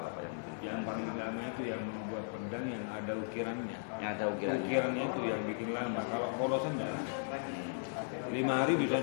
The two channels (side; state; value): right; silent; 53 dB below the other